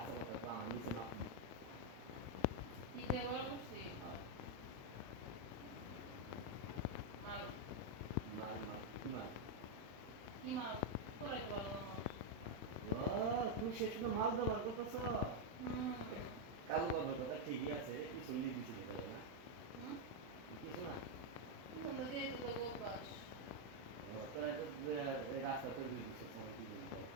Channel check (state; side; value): late; left; 36 ms